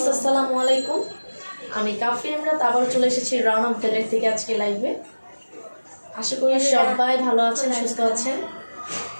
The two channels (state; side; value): inverted; both; correlation -1.00